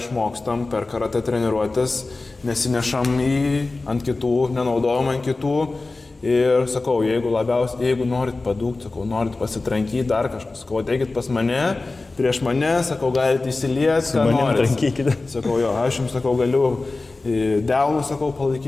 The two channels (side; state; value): right; quieter; 3.4 dB